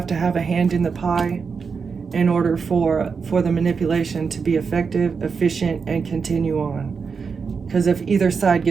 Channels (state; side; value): quieter; left; 5.5 dB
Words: to have a hand in the pie in order for the manipulation to be effective, efficient, and continue on. Because if either side